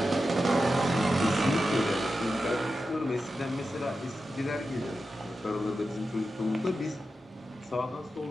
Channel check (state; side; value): normal; both; correlation 0.91